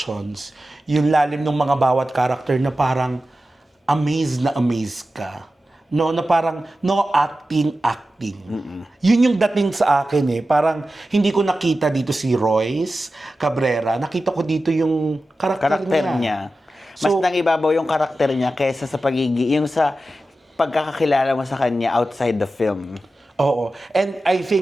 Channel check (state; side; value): normal; both; correlation 0.93